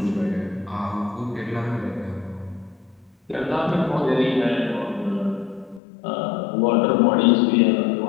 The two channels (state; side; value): drops out; right; at 5.8 s